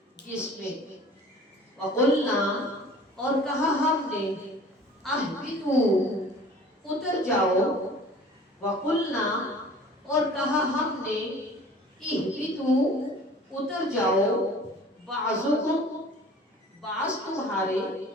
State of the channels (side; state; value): both; normal; correlation 0.46